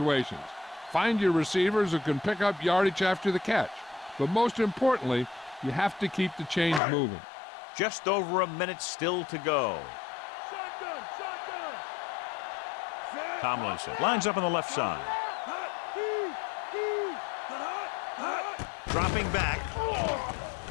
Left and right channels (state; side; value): drops out; right; at 6.8 s